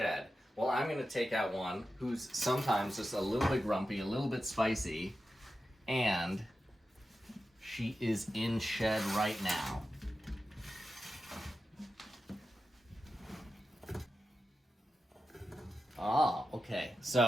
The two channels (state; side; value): normal; both; correlation 0.91